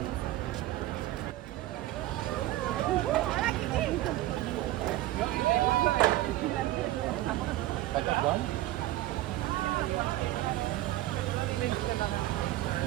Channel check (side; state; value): left; quieter; 15.7 dB